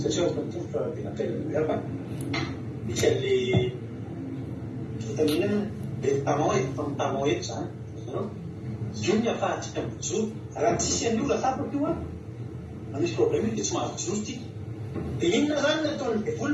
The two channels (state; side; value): identical; both; correlation 1.00